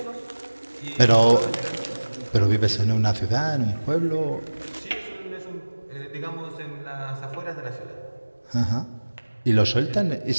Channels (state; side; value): inverted; both; correlation -1.00